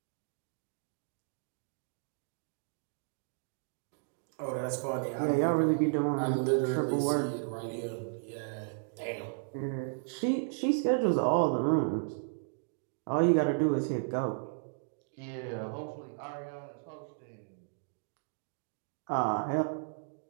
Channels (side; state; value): left; silent; digital silence